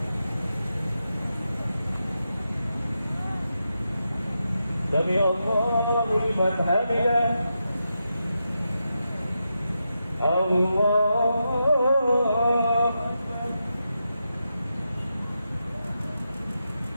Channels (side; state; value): both; inverted; correlation -0.87